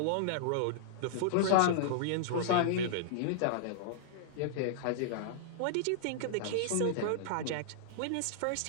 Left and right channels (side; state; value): both; different; correlation -0.01